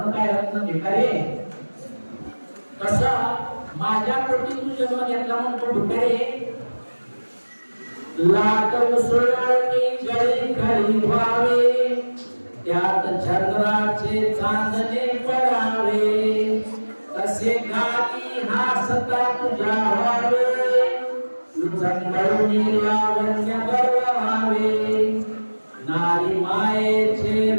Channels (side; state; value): both; inverted; correlation -1.00